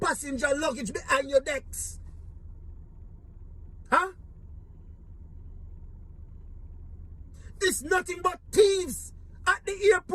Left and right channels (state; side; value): identical; both; correlation 1.00